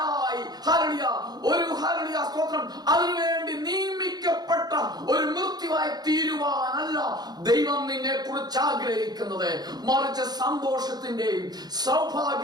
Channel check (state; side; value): late; left; 0.19 ms